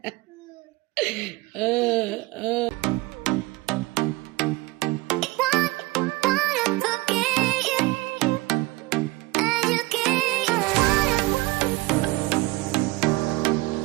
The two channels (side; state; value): left; quieter; 21.2 dB